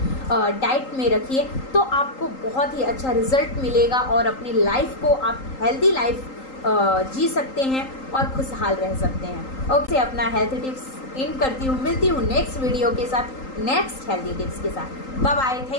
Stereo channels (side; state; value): right; late; 3.8 ms